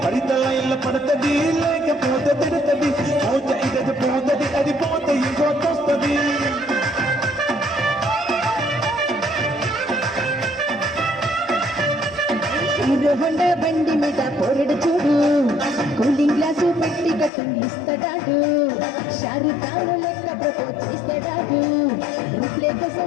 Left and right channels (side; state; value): right; drops out; at 17.3 s